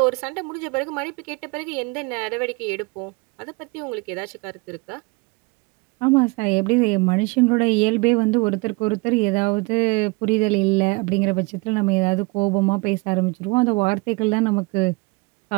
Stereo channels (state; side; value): quieter; left; 26.8 dB